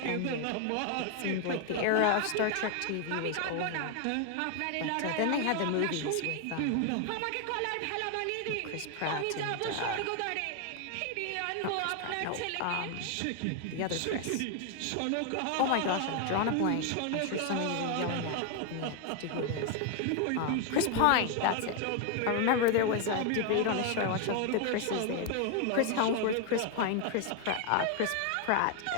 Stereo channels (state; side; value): different; both; correlation 0.01